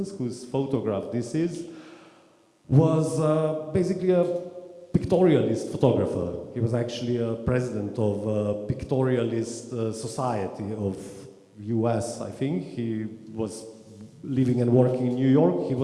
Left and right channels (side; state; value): both; identical; correlation 1.00